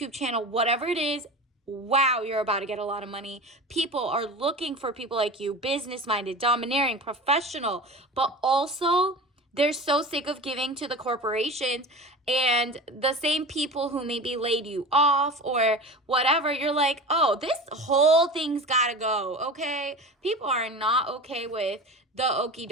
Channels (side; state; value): both; normal; correlation 0.33